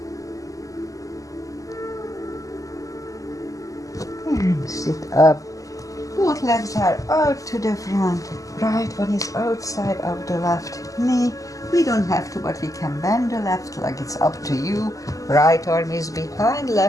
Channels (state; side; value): late; right; 0.16 ms